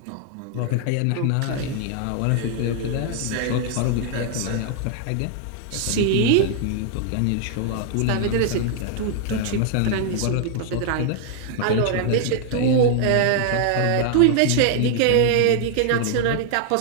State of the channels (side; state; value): both; different; correlation 0.00